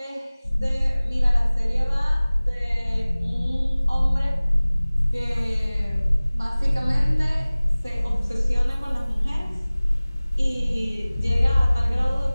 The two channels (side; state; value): both; inverted; correlation -0.99